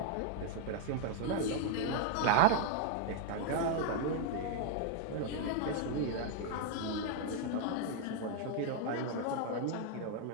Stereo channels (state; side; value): different; both; correlation 0.00